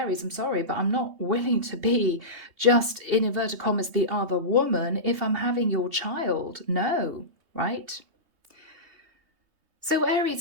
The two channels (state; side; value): late; left; 3.2 ms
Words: I'm sorry, but I'm not willing to be just, in inverted commas, the other woman if I'm having your child. No, right? So Aries,